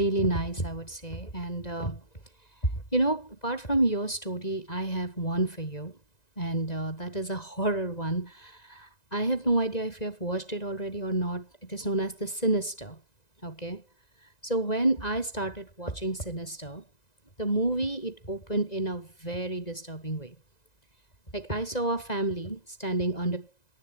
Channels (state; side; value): late; right; 1.9 ms